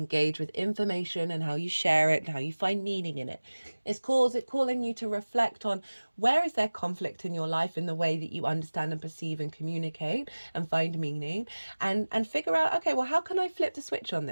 with information and how you share it and how you find meaning in it. It's calling you to reflect on where is there conflict in your life in the way that you understand and perceive and communicate and find meaning, and figure out, okay, well, how can I flip the switch on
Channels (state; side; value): inverted; both; correlation -1.00